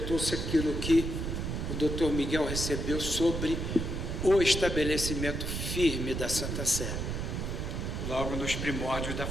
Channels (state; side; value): noise; right; rumble, 3 dB below the sound